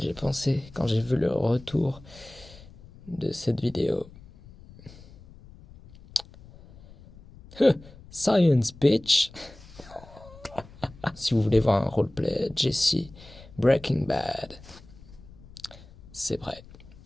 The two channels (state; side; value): noise; left; rumble, 21 dB below the sound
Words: pensé quand j'ai vu le retour de cette vidéo? Science bitch. Si vous voulez voir un roleplay Jesse Breaking Bad, c'est vrai.